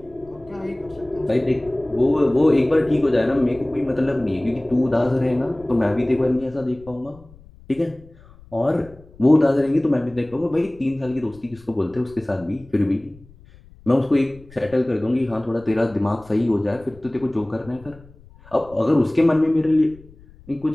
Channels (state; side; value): noise; left; rumble, 24 dB below the sound